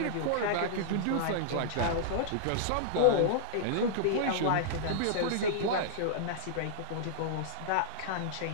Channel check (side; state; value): both; different; correlation -0.01